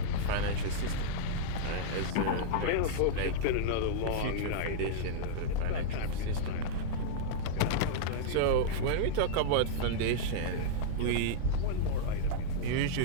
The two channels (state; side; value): different; both; correlation -0.02